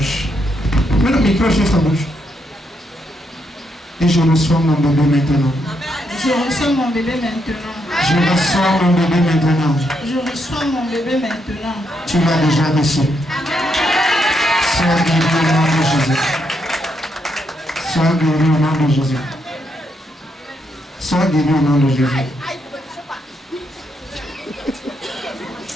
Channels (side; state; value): both; normal; correlation 0.78